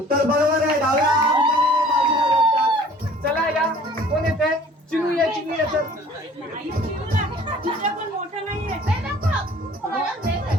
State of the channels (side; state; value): both; normal; correlation 0.51